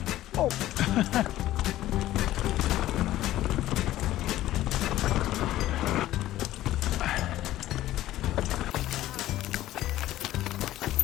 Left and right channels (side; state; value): right; quieter; 14.5 dB